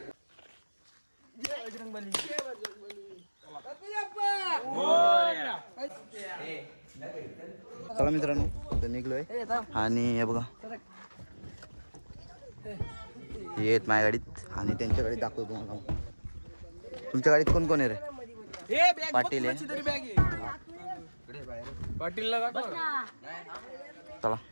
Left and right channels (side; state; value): both; inverted; correlation -1.00